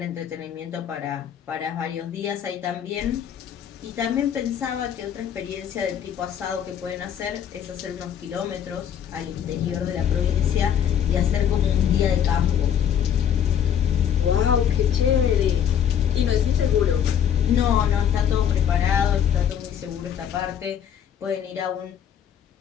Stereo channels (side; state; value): right; quieter; 8.9 dB